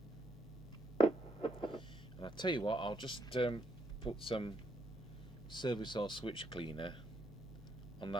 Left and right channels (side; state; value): both; normal; correlation 0.75